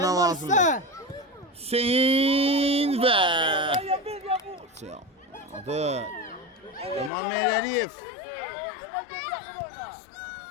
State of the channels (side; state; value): right; drops out; at 7.1 s